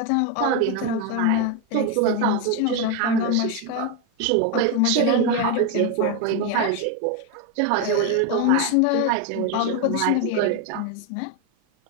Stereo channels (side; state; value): both; different; correlation 0.02